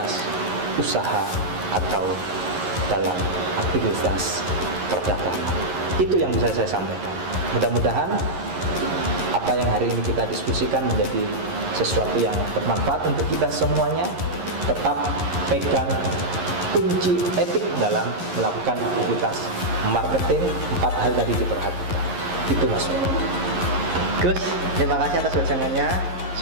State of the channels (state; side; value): late; left; 11 ms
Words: usaha atau dalam aktivitas perdagangan. Itu yang bisa saya sampaikan. Mudah-mudahan apa yang hari ini kita diskusikan menjadi sesuatu yang bermanfaat untuk kita semuanya. Tetap pegang kunci etik dalam melakukan aktivitas marketing. 4 hal tadi diperhatikan. Itu Mas. Gus, terima kasih atas wejangannya.